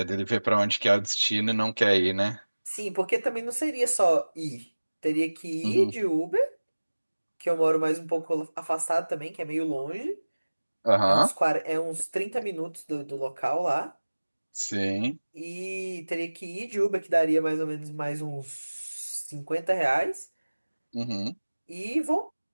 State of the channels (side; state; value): both; inverted; correlation -1.00